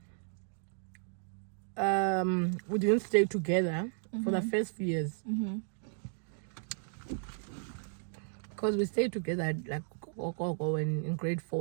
we didn't stay together for the first few years. Because we stayed together like in grade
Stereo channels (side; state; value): left; silent; digital silence